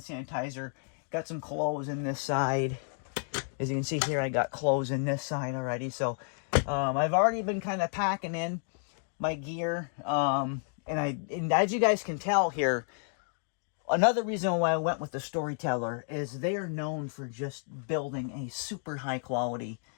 sanitizer. Got some clothes in this side. As you can see here, I got clothes in this side already. So I've already been kind of packing in my gear. And as you guys can tell here, another reason why I went with the Storyteller is they are known for just building a super high quality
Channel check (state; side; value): silent; right; 57 dB below the other